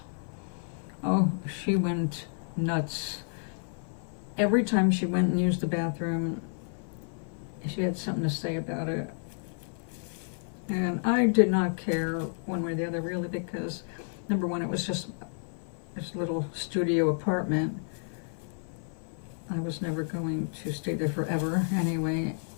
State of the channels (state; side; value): silent; right; 57 dB below the other